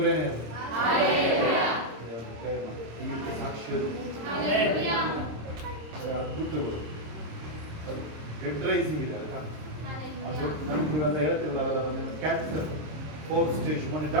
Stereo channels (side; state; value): left; late; 26 ms